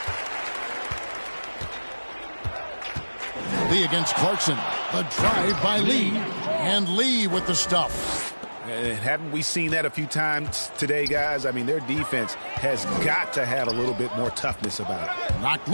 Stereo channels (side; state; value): both; inverted; correlation -1.00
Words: Lee against Clarkson. The drive by Lee. And Lee with the stuff. And haven't we seen that a few times today, guys? I mean, their defense has got to have a little bit more toughness about it. Knocked